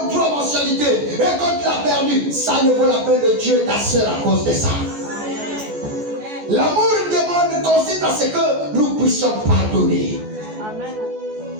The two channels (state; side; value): late; left; 14 ms